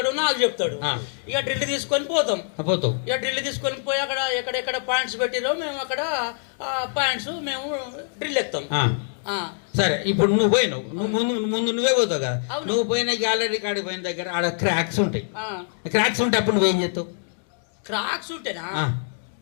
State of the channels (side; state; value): right; silent; digital silence